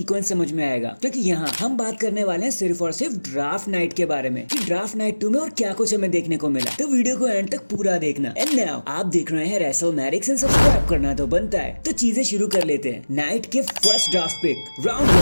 समझ में आएगा। क्योंकि यहाँ हम बात करने वाले हैं सिर्फ और सिर्फ ड्राफ्ट नाइट के बारे में कि ड्राफ्ट नाइट 2 में और क्या कुछ हमें देखने को मिला। तो वीडियो को एंड तक पूरा देखना। एंड नाउ आप देख रहे हैं रेसलमैनिक्स एंड सब्सक्राइब करना तो बनता है। तो चीजें शुरू कर लेते हैं नाइट के फर्स्ट ड्राफ्ट पिक राउंड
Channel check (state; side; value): inverted; both; correlation -1.00